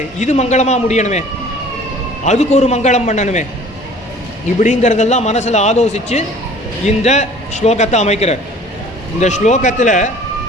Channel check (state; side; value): normal; both; correlation 0.49